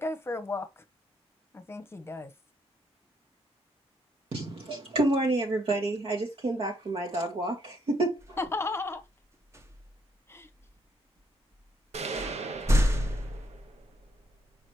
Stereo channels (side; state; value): both; normal; correlation 0.73